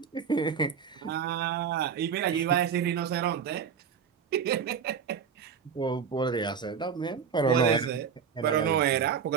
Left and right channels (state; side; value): quieter; left; 6.8 dB